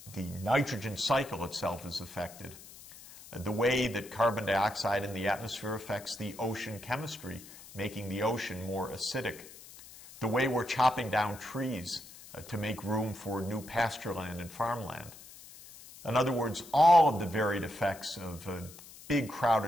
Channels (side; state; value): left; noise; hiss, 18 dB below the sound